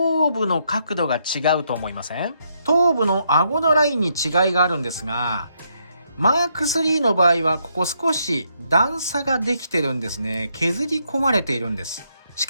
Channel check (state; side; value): inverted; both; correlation -0.76